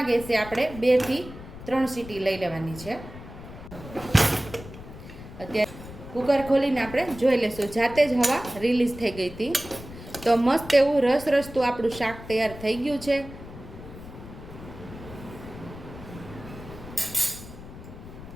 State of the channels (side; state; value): left; noise; rumble, 14 dB below the sound